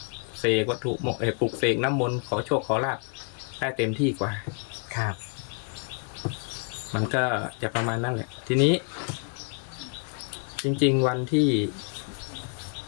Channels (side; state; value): right; quieter; 39.9 dB